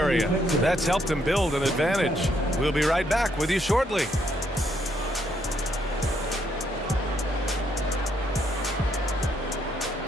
That's helped them build an advantage. We'll be right back with you shortly.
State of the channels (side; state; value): both; normal; correlation 0.73